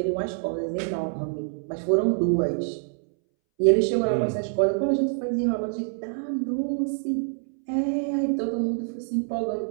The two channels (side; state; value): left; silent; 61 dB below the other